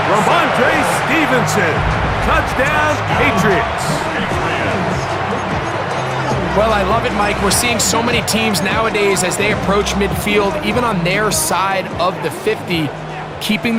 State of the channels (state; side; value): identical; both; correlation 1.00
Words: Ramondre Stevenson, touchdown Patriots. Well, I love it, Mike. We're seeing so many teams nowadays as they approach midfield, even on their side of the 50, keeping